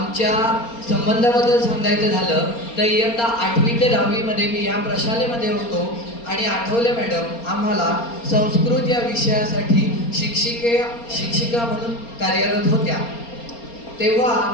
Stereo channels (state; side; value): late; right; 4.3 ms